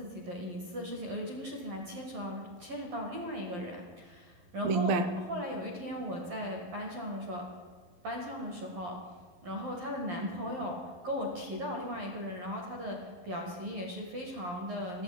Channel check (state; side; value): late; left; 11 ms